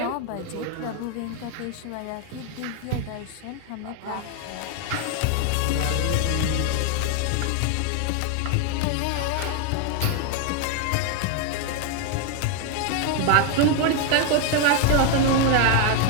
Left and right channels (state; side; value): different; both; correlation 0.00